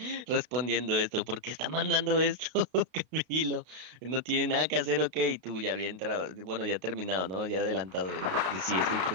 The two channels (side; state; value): left; late; 32 ms